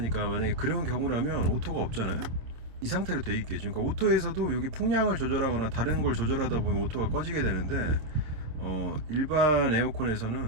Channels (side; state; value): left; late; 26 ms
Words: 만약에 그런 경우라면 오토가 없잖아요. 이 상태로 돼 있겠죠. 그러니까 오토에서도 여기 풍량을 조절하거나 다른 걸 조절하다 보면 오토가 꺼지게 되는데, 일반